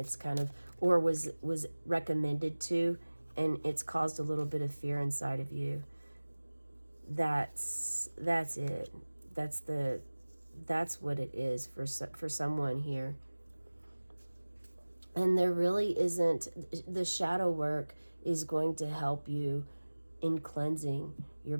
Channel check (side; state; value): both; inverted; correlation -1.00